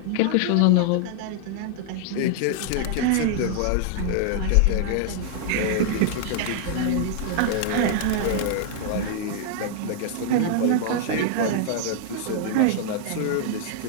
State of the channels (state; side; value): different; both; correlation 0.00